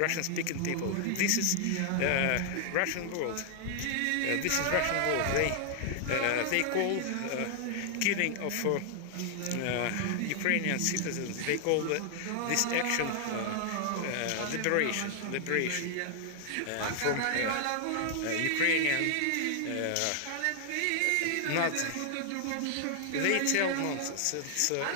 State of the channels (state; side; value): different; both; correlation 0.00